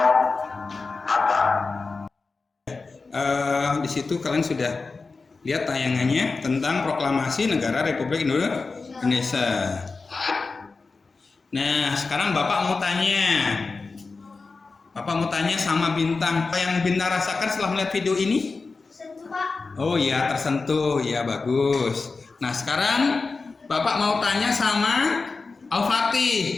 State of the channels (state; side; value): quieter; right; 4.1 dB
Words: Hatta. Di situ kalian sudah lihat tayangannya tentang proklamasi negara Republik Indonesia. Nah, sekarang Bapak mau tanya sama Bintang, apa yang Bintang rasakan setelah melihat video ini? Oh iya, tersentuh, ya bagus. Nah, sekarang Bapak mau tanya sama